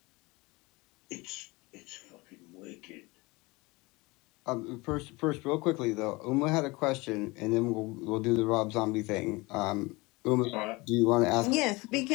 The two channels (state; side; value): quieter; right; 24.0 dB